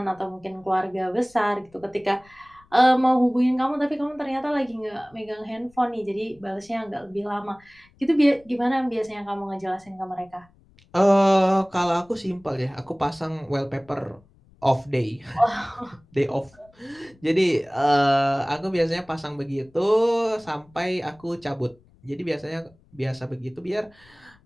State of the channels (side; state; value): left; noise; rumble, 29 dB below the sound